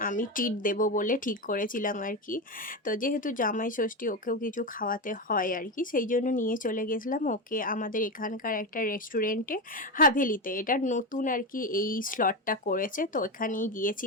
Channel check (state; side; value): normal; both; correlation 0.15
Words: আমি ট্রিট দেবো বলে ঠিক করেছিলাম আর কি। তো যেহেতু জামাই ষষ্ঠী, ওকেও কিছু খাওয়াতে হয় আর কি, সেই জন্য নিয়ে চলে গেছিলাম ওকে আমাদের এখানকার একটা রেস্টুরেন্টে, হাভেলিতে। এটা নতুন আর কি এই স্লটটা করেছে, তো ওখানেই